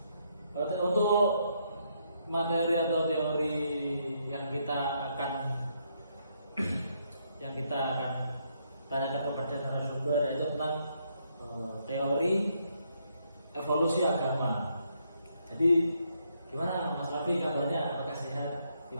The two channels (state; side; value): inverted; both; correlation -0.75